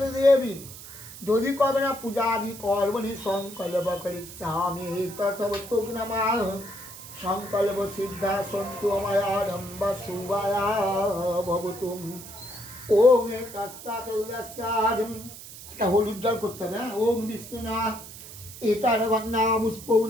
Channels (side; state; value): right; noise; hiss, 14 dB below the sound